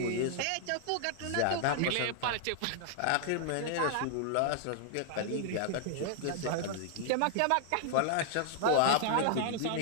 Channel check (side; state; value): both; different; correlation 0.00